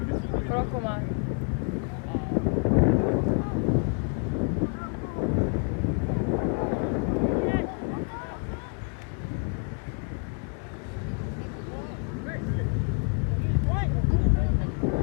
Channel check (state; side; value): quieter; right; 39.6 dB